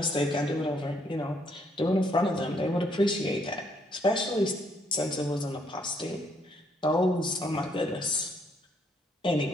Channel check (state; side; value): normal; both; correlation 0.70